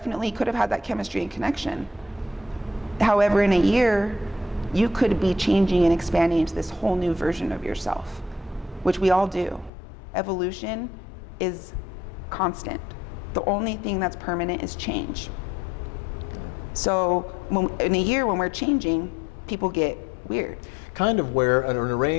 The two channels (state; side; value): drops out; right; at 9.7 s